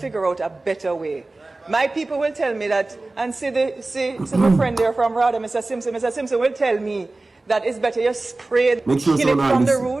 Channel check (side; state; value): left; quieter; 3.1 dB